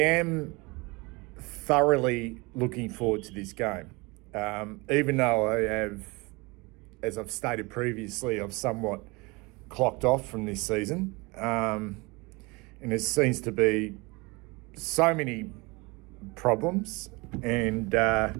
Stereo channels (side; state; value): left; quieter; 25.9 dB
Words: thoroughly looking forward to this game. Even though I have, as I've stated previously, I've somewhat clocked off from this season. And there seems to be so many problems. And